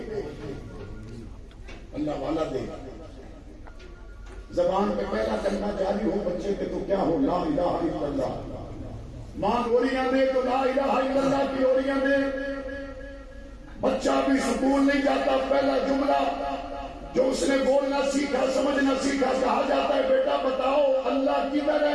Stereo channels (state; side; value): identical; both; correlation 1.00